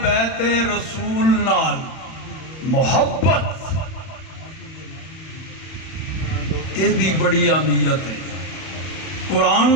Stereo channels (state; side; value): late; right; 31 ms